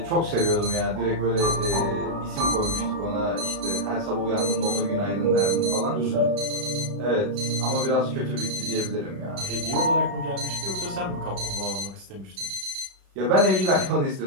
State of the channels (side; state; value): left; late; 33 ms